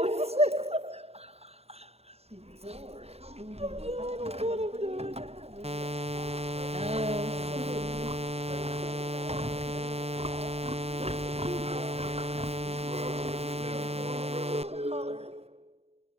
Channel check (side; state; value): left; late; 0.30 ms